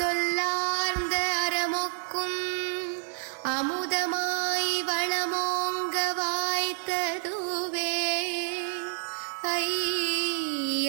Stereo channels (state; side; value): silent; left; 57 dB below the other